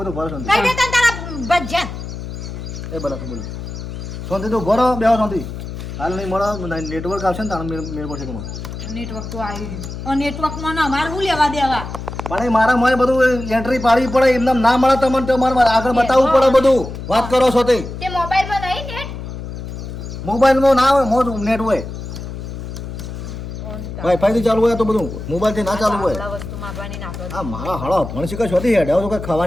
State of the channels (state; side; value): noise; left; hum, 9 dB below the sound